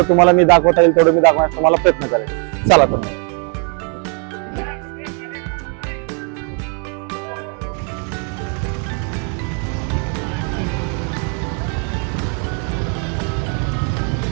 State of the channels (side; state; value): left; quieter; 39.5 dB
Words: तुम्हाला मी दाखवता येईल तेवढं मी दाखवण्याचा तुम्हाला प्रयत्न करेन. चला तर